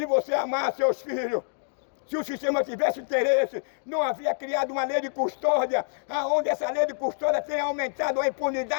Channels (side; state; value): right; silent; digital silence